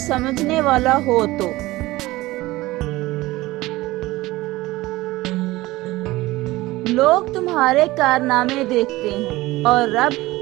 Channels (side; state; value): left; quieter; 18.9 dB